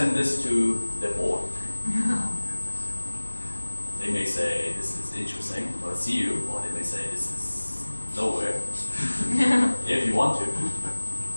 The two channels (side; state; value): both; inverted; correlation -1.00